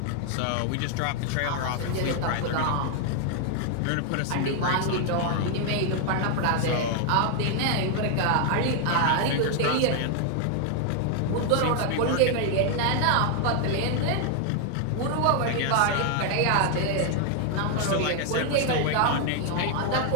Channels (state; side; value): different; both; correlation 0.00